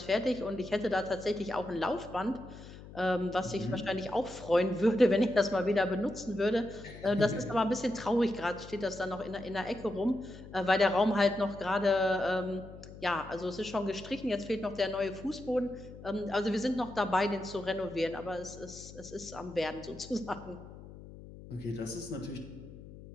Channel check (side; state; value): left; noise; hum, 16 dB below the sound